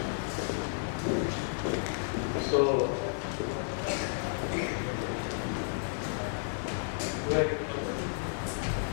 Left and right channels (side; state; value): right; silent; digital silence